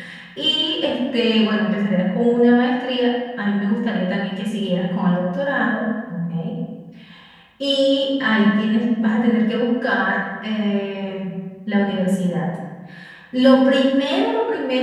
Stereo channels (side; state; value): both; identical; correlation 1.00